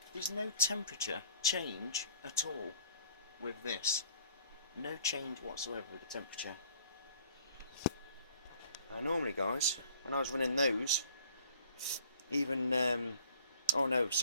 There's no temperature change at all with this. No change whatsoever with the temperature. Now normally guys, when I was running those, even oh no,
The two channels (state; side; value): inverted; both; correlation -0.55